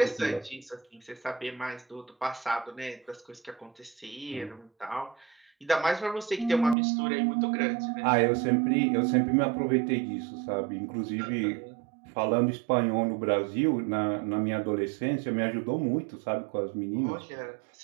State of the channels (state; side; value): drops out; left; at 6.8 s